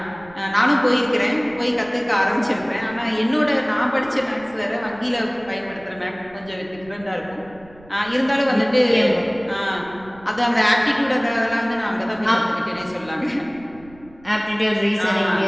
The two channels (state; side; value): noise; right; rumble, 24 dB below the sound